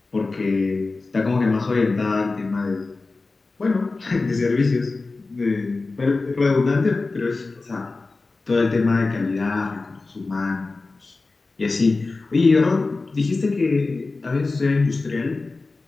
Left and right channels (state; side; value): quieter; right; 3.6 dB